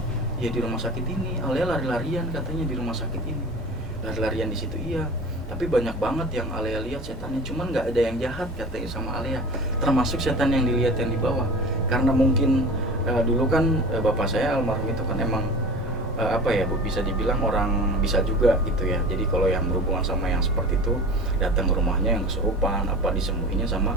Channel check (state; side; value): normal; both; correlation 0.35